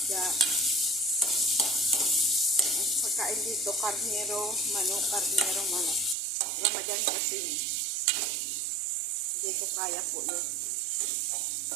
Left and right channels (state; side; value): drops out; left; at 6.2 s